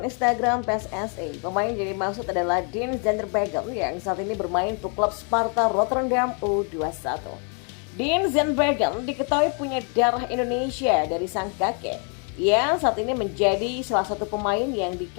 Instagram PSSI. Pemain yang dimaksud adalah Dean Zandbergen yang saat ini bermain untuk klub Sparta Rotterdam U21. Dean Zandbergen diketahui punya darah Indonesia dari sang kakek. Ia saat ini menjadi salah satu pemain yang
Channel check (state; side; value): quieter; right; 39.2 dB